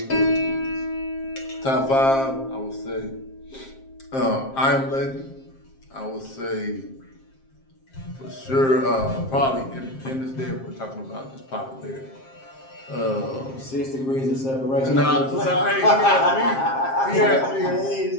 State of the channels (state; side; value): late; right; 7.5 ms